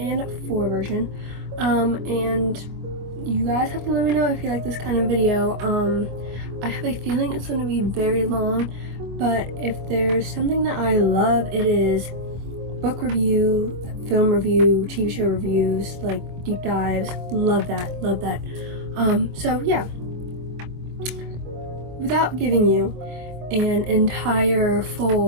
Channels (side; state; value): left; late; 25 ms